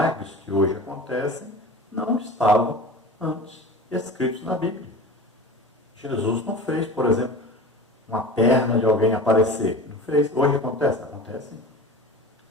que hoje acontecem não estavam antes escritos na Bíblia. Jesus não fez, por exemplo, uma perna de alguém aparecer. Não fez. Hoje acontece? Acontece.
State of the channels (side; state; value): both; normal; correlation 0.35